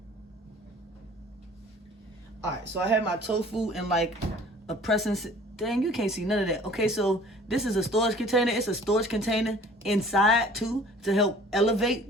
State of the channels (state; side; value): normal; both; correlation 0.50